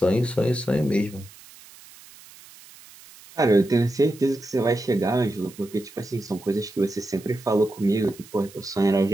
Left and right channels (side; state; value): right; noise; hiss, 22 dB below the sound